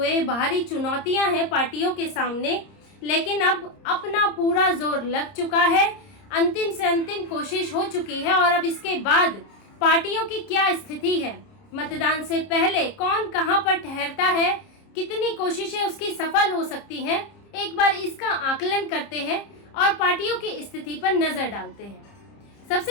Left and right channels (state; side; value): late; right; 30 ms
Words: बाहरी चुनौतियां हैं पार्टियों के सामने, लेकिन अब अपना पूरा जोर लग चुका है। अंतिम से अंतिम कोशिश हो चुकी है और अब इसके बाद पार्टियों की क्या स्थिति है, मतदान से पहले कौन कहां पर ठहरता है, कितनी कोशिशें उसकी सफल हो सकती हैं, एक बार इसका आकलन करते हैं और पार्टियों की स्थिति पर नजर डालते हैं।